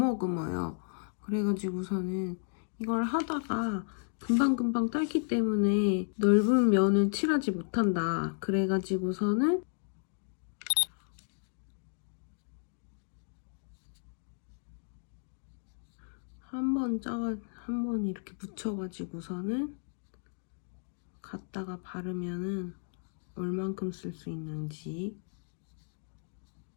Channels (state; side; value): silent; right; digital silence